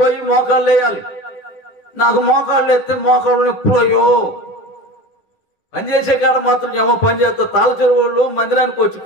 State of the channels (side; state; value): right; late; 10 ms